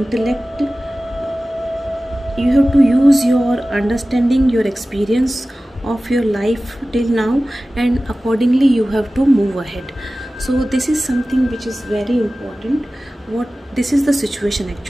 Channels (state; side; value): normal; both; correlation 0.96